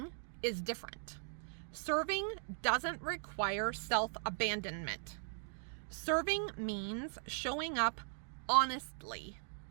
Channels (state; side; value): silent; left; 52 dB below the other